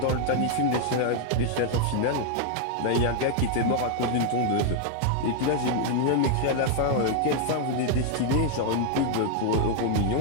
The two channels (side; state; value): both; different; correlation 0.00